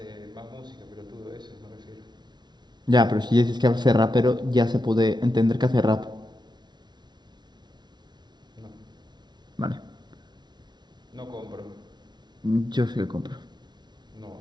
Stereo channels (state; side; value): late; left; 0.20 ms